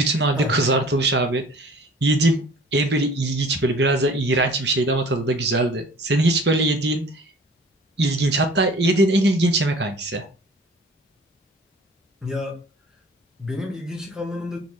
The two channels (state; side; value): normal; both; correlation 0.48